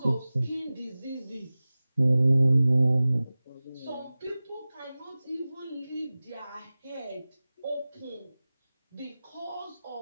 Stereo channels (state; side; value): inverted; both; correlation -0.97